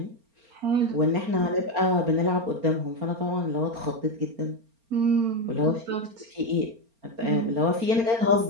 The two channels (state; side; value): late; left; 4.4 ms